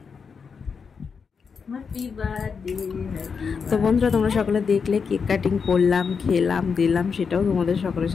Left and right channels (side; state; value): right; quieter; 5.8 dB